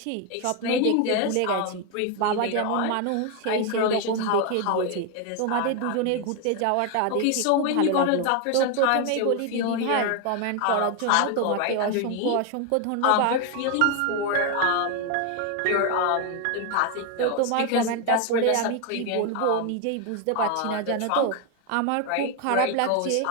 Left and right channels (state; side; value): different; both; correlation 0.01